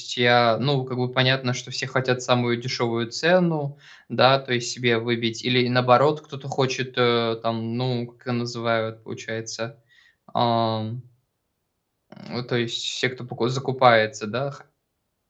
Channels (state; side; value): identical; both; correlation 1.00